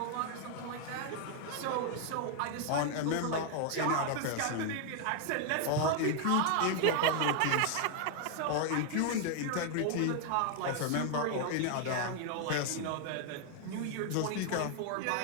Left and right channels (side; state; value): both; different; correlation 0.00